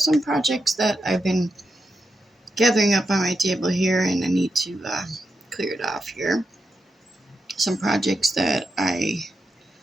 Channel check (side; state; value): both; normal; correlation 0.86